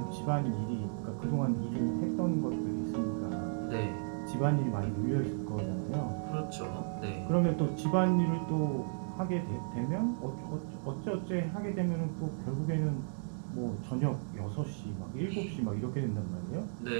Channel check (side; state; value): left; silent; digital silence